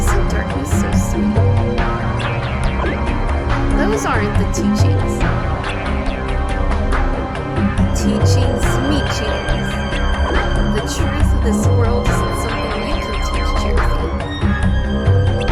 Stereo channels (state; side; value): identical; both; correlation 1.00